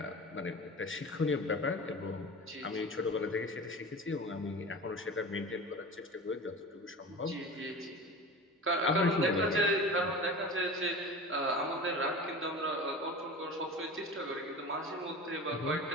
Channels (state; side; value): normal; both; correlation 0.33